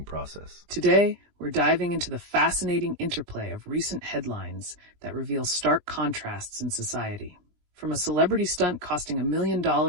process. Today, we're diving into the fascinating interplay of recent headlines that reveal stark contrasts in society. From a celebrity stunt costing $1 million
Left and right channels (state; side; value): late; left; 20 ms